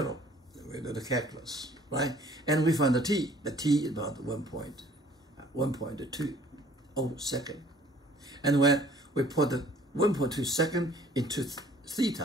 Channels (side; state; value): both; normal; correlation 0.55